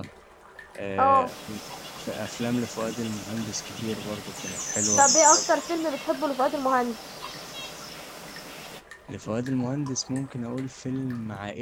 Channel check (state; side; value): identical; both; correlation 1.00